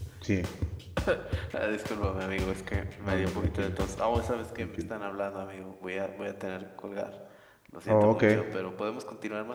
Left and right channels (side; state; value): both; identical; correlation 1.00